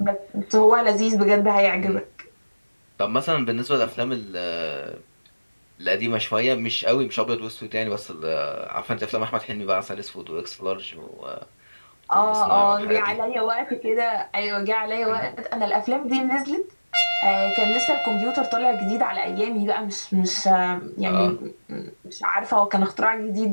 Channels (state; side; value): inverted; both; correlation -1.00